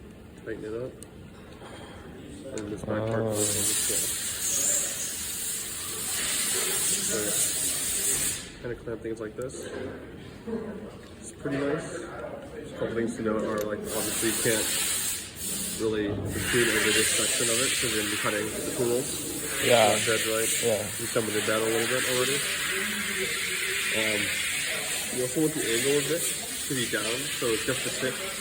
Tighten it up. And this back part goes on the slot. So yeah. Kind of clamp things like this. It's pretty nice. Just a couple things to note are like obviously you can't really protrude over this section of it because you're going to be cutting the tool. Yeah. Dead right. Yeah. You come with it down a little bit already. You also want the angle of this to be down, so it's just the tip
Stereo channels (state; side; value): identical; both; correlation 1.00